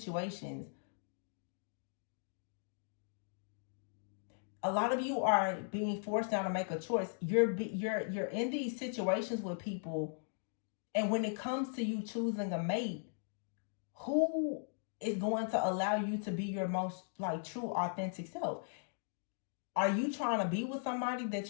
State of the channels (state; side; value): silent; right; digital silence